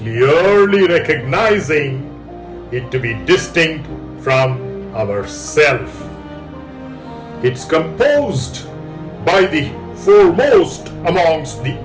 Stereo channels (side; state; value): both; identical; correlation 1.00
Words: recognizing it to be distinct from ourself. It's composed by the foremost amongst the